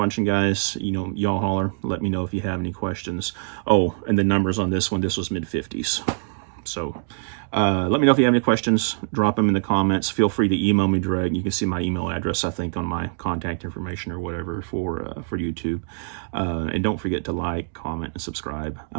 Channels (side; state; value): left; silent; digital silence